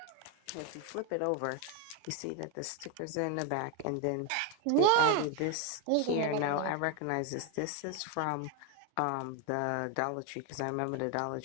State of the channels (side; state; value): both; different; correlation 0.01